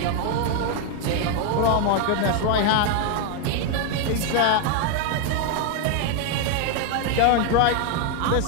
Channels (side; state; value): both; different; correlation 0.01